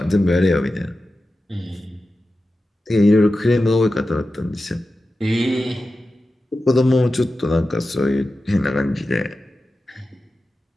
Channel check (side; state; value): both; normal; correlation 0.93